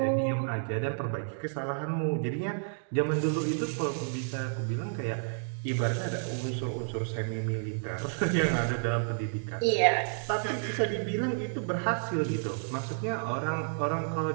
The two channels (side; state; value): left; silent; digital silence